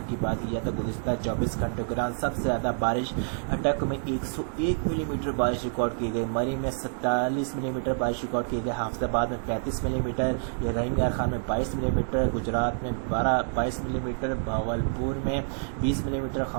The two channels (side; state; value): left; silent; digital silence